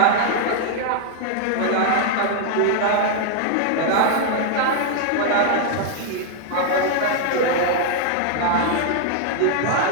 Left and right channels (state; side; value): different; both; correlation 0.00